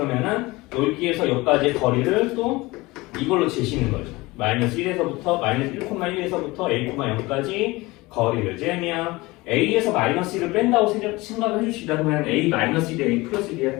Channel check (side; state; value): right; quieter; 21.7 dB